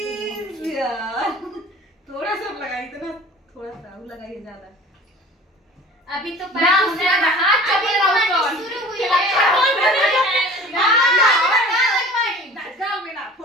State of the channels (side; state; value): both; normal; correlation 0.44